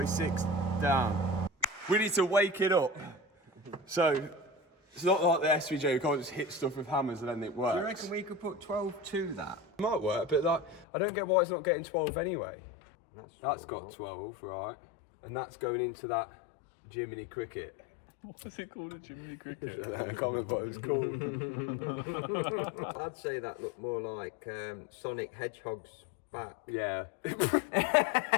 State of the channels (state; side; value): drops out; right; at 10.9 s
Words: down. We need to wake it up. So it's not like the SVJ, you can't just hit stuff with hammers and then it works. Do you reckon we could put 12 to that? It might work, but like, I don't get why it's not getting 12 anyway. That's got volt. 12, right? And that's going into that Jiminy Cricket. What is it called, a Jiminy Cricket? I don't know, I can't remember what it was called. I'd say that looked more like Sonic Hedgehog's back. Yeah.